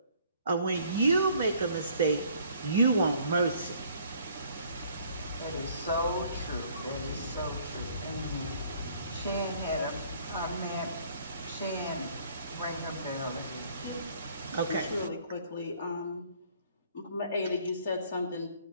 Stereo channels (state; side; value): inverted; both; correlation -0.59